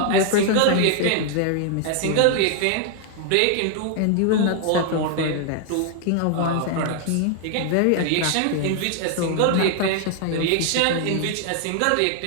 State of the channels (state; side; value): different; both; correlation 0.00